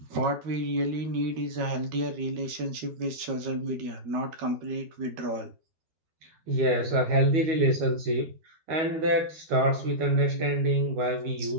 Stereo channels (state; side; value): late; left; 12 ms